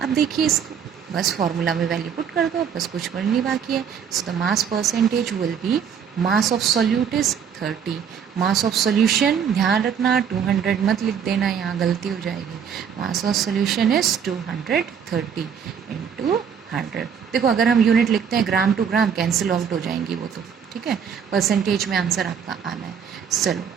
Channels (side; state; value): left; quieter; 7.5 dB